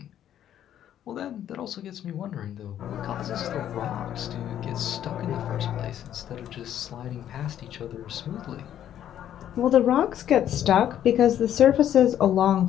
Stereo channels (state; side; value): quieter; right; 10.8 dB